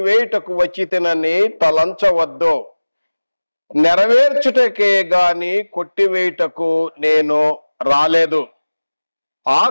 వచ్చితినని తలంచవద్దు, నెరవేర్చుటకే గాని కొట్టివేయుటకు నేను రాలేదు.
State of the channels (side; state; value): both; inverted; correlation -1.00